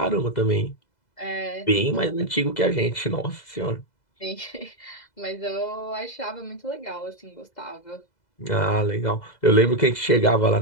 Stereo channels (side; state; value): right; late; 2.0 ms